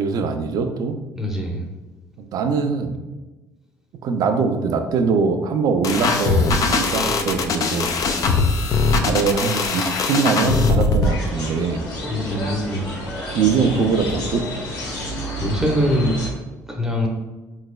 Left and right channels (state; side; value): normal; both; correlation 0.44